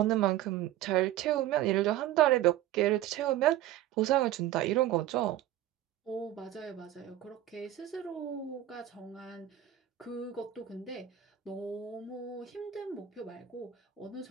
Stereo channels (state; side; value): quieter; left; 12.7 dB